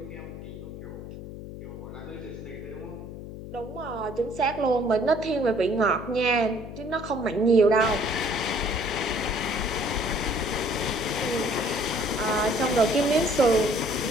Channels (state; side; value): noise; left; hum, 11 dB below the sound